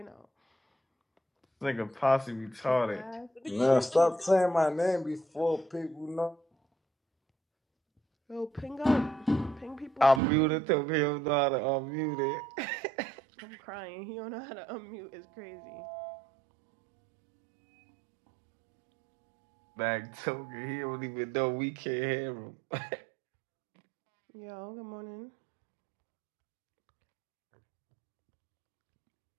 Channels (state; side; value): drops out; left; at 10.2 s